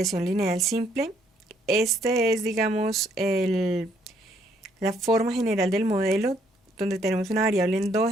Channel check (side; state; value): both; normal; correlation 0.68